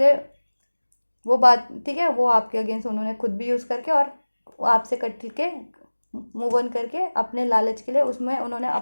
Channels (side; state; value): both; inverted; correlation -1.00